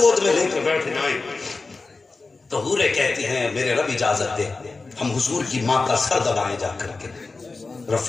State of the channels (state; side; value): quieter; right; 3.8 dB